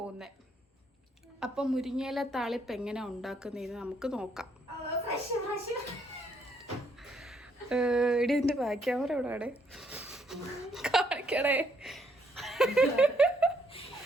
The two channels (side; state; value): both; normal; correlation 0.71